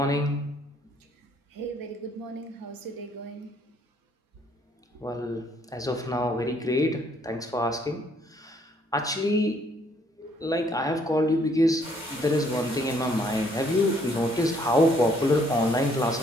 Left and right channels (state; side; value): normal; both; correlation 0.66